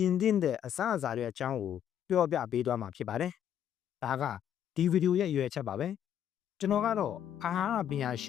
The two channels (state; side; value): quieter; right; 9.9 dB